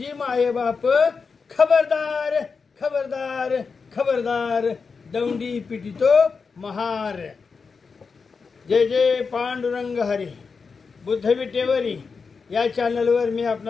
माये बाप। खबरदार खबरदार खबरदार दौंडी पिटितो महार। जय जय पांडुरंग हरी। बुद्ध विटेवरी या चॅनलवर मी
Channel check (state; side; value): quieter; right; 5.1 dB